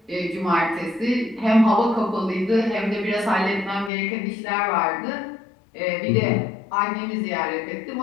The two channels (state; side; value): drops out; right; at 3.9 s